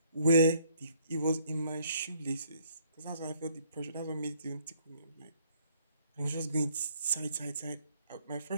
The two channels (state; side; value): inverted; both; correlation -0.65